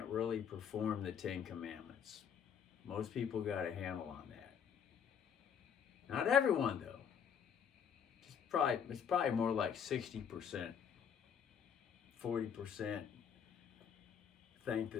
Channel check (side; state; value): right; quieter; 7.8 dB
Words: really perform the Ten Commandments. Most people got a handle on that. Not everyone, though. It's probably more like 60%, 40% think